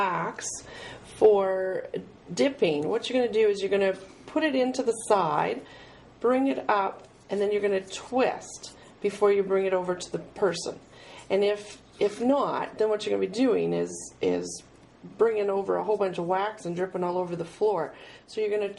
for dipping, what you're going to do is you're going to put it into the side, bring it up, and then you're going to twist before you bring it over to the person. And if not, then what you're going to be doing is bringing over a whole bunch of wax and dripping all over the floor. So you're going to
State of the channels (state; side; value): identical; both; correlation 1.00